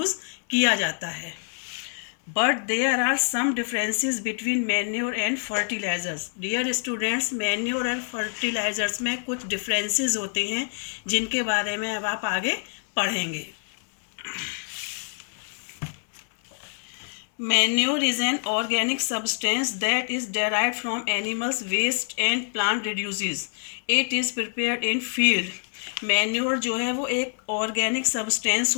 किया जाता है. But there are some differences between manure and fertilisers. Dear students, manure and fertilisers में कुछ डिफरेंसेस होते हैं जिनके बारे में अब आप आगे पढ़ेंगे. Manure is an organic substance that is derived from animals' waste and plant residues. It is prepared in field. Manure जो है वो एक ऑर्गेनिक सब्सटेंस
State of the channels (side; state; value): right; silent; digital silence